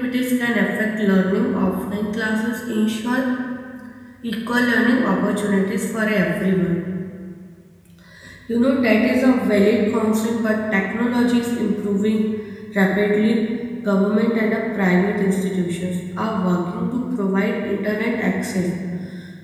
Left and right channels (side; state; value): both; identical; correlation 1.00